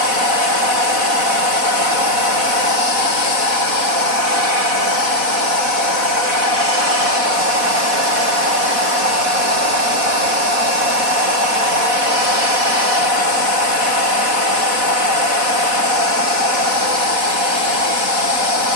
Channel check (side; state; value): left; late; 4.1 ms